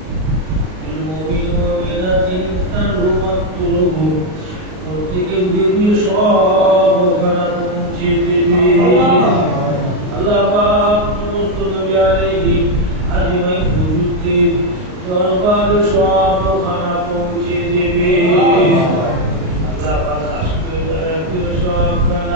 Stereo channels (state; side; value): late; left; 38 ms